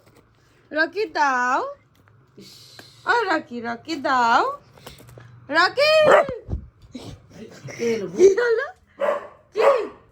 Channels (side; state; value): both; identical; correlation 1.00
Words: রকি, দাও, ও রকি, রকি দাও, রকি। এলো কি হলো? কি